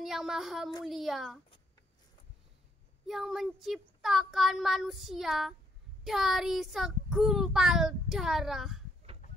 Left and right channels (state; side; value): normal; both; correlation 0.71